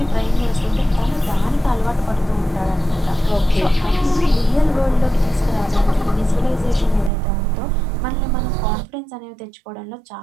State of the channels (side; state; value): left; drops out; at 7.1 s